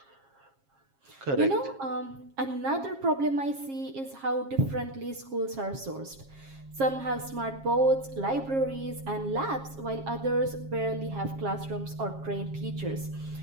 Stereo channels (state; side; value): late; left; 7.4 ms